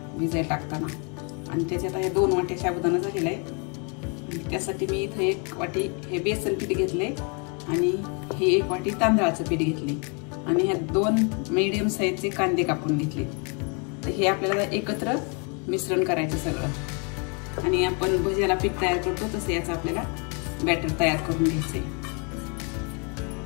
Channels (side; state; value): right; quieter; 35.2 dB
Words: भिजाय टाकताना, आणि त्याच्यात हे 2 वाट्या साबुदाणा झालेला आहे। त्यासाठी मी इथे 1 वाटी हे बेसन पीठ घेतले आणि हे 1 वाटी तांदळाचं पीठ घेतले आणि ह्या 2 मीडियम साईजचे कांदे कापून घेतले। तर हे आपल्याला एकत्र मिश्रण करायचं सगळं, आणि आपण भज्याला पीठ तयार करतो तसे याचं आपल्याला बॅटर तयार करून घ्यायचंय।